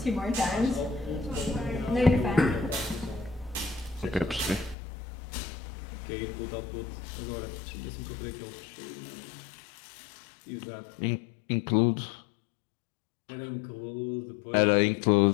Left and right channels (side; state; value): right; drops out; at 4.8 s